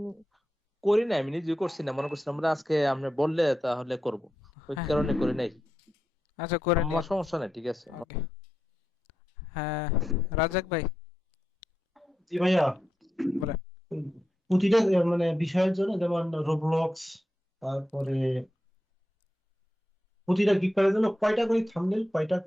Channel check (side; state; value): both; normal; correlation 0.87